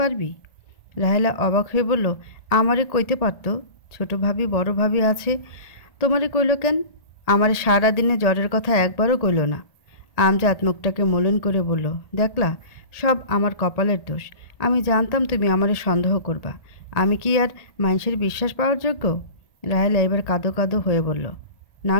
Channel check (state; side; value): late; right; 1.8 ms